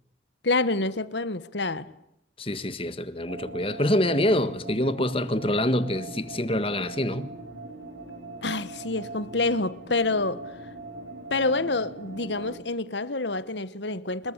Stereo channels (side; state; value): both; normal; correlation 0.22